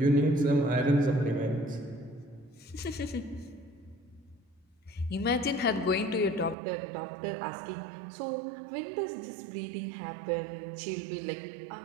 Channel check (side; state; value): left; drops out; at 6.6 s